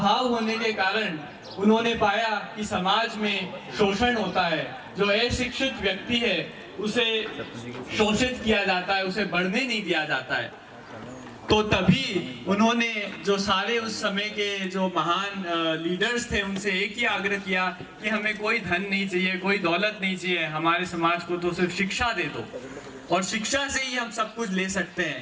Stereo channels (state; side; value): identical; both; correlation 1.00